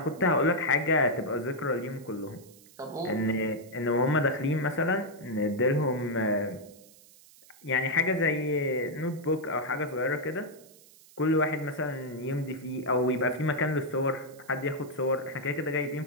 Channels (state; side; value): noise; right; hiss, 24 dB below the sound